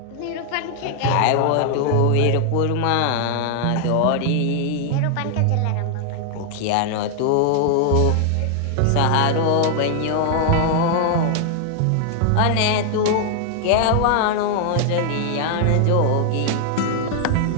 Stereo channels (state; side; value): different; both; correlation 0.00